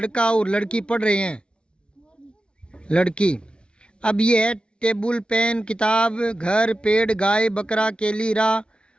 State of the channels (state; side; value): late; right; 0.056 ms